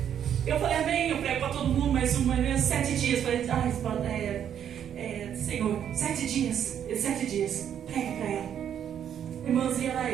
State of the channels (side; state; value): left; quieter; 9.3 dB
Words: Eu falei: amém, eu prego para todo mundo, mas 7 dias. Falei: Senhor, 7 dias. 7 dias, prega para ela. Irmãs, e era